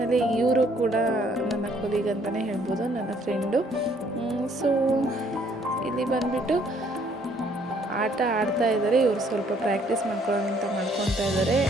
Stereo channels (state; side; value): normal; both; correlation 0.64